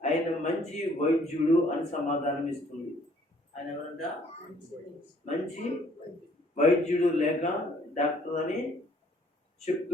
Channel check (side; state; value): both; normal; correlation 0.61